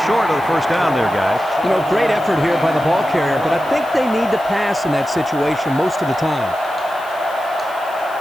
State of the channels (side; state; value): left; noise; hiss, 23 dB below the sound